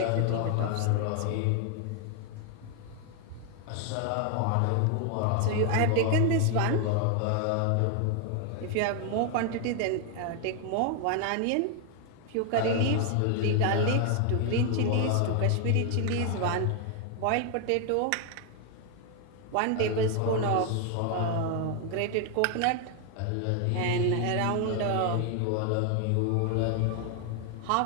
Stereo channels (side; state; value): both; different; correlation 0.00